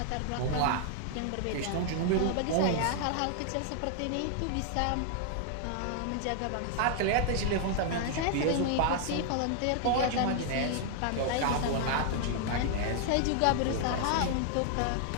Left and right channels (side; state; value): both; different; correlation 0.00